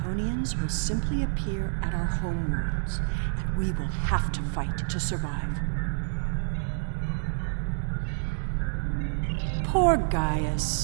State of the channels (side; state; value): left; silent; digital silence